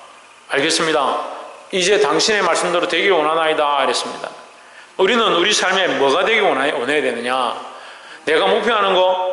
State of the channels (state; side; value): identical; both; correlation 1.00